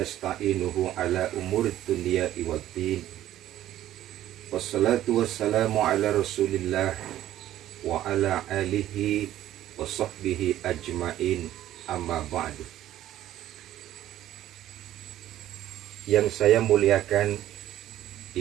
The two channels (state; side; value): quieter; left; 13.0 dB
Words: ala umurid dunya waddin. Wassalatu wassalamu ala rasulillah wa ala alihi wa sahbihi ajmain, amma ba'du. Yang saya muliakan